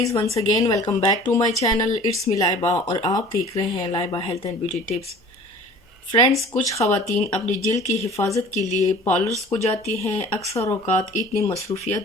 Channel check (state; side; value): normal; both; correlation 0.46